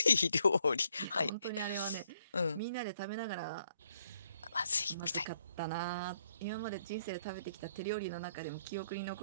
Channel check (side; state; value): both; inverted; correlation -0.71